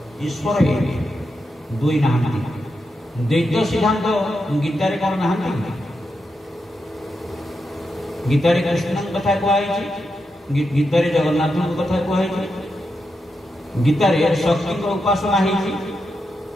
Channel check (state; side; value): normal; both; correlation 0.86